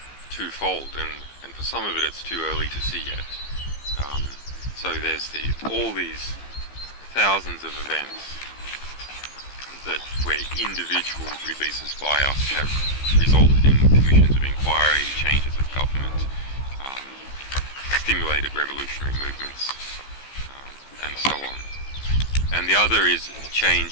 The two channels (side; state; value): right; late; 15 ms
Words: twofold, and for some of it it's too early to see yet. So there's all these thousands of events that where individual releases by us have resulted in commissions of inquiry, changes of government, stimulated revolutionary movements, and so on. And the other is a